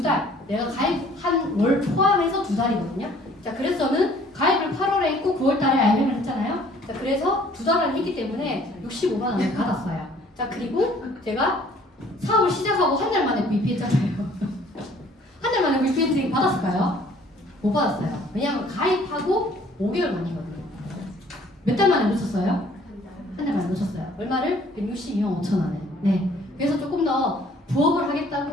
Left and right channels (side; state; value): both; normal; correlation 0.57